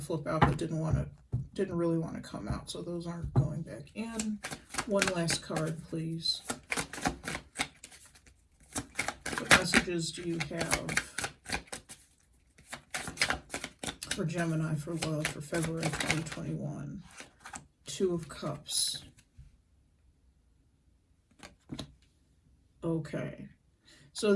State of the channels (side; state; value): both; identical; correlation 1.00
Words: to flip out but didn't really want to come out, so those aren't going back in. One last card, please. What messages do you have for Gemini for love for February 2021? Two of Cups. Okay. So